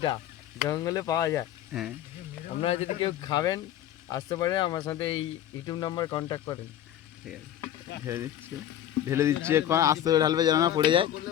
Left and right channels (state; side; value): quieter; right; 11.4 dB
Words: জঙ্গলে পাওয়া যায়। হ্যাঁ, আপনারা যদি কেউ খাবেন আসতে পারেন, আমার সাথে এই ইউটিউব নাম্বার কন্ট্যাক্ট করেন। ঠিক আছে, ঢেলে দিচ্ছি। এখন আস্তে করে ঢালবে যেন না পড়ে যায়।